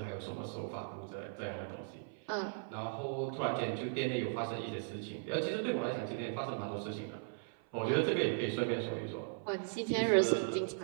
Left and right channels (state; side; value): silent; left; 53 dB below the other